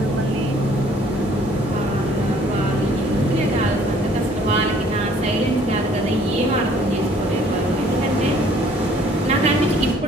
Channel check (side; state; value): both; normal; correlation 0.58